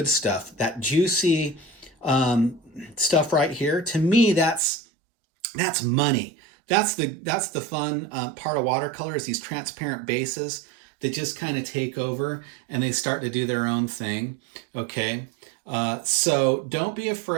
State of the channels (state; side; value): drops out; left; at 4.6 s